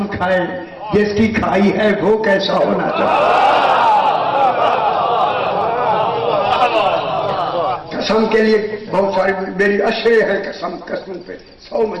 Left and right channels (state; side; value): identical; both; correlation 1.00